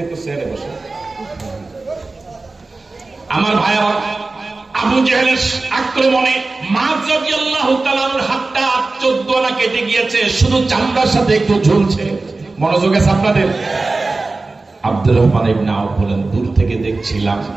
চেয়ারে বসে। আমার ভাইরা, আবু জাহেলের আক্রমণে মুআয রাদিয়াল্লাহু তাআলার হাতটা 14 আনা কেটে গিয়েছে, শুধু চামড়ার সাথে একটু ঝুলছে। মনোযোগ আছে আপনাদের? আব্দুর রহমান ইবনে আওফ বলেন, দূর থেকে দেখছিলাম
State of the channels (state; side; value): quieter; left; 3.5 dB